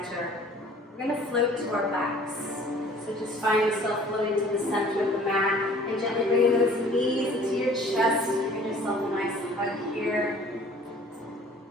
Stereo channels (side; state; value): both; normal; correlation 0.51